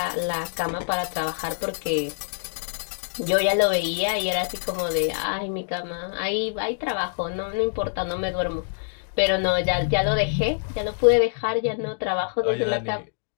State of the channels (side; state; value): right; silent; digital silence